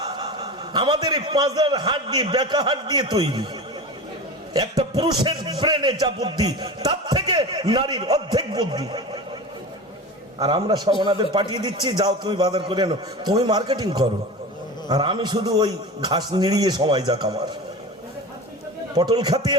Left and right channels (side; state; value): both; normal; correlation 0.30